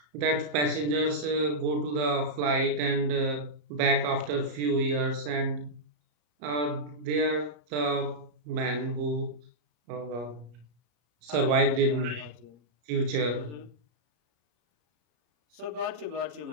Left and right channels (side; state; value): left; late; 34 ms